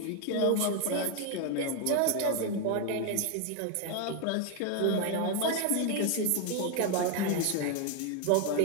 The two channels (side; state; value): both; different; correlation 0.01